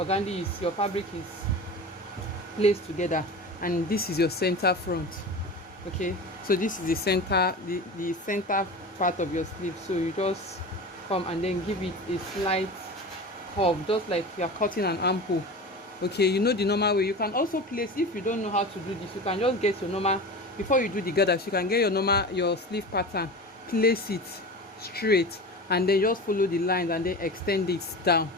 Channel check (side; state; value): both; normal; correlation 0.31